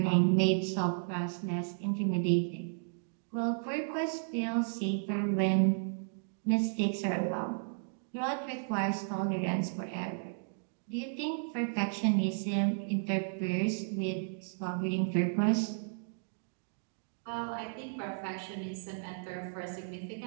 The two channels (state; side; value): silent; left; digital silence